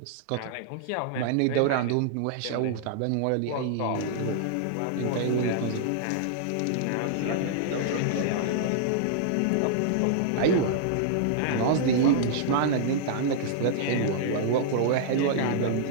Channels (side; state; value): both; different; correlation -0.01